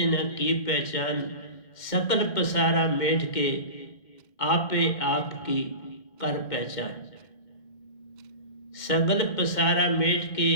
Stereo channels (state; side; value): late; right; 2.1 ms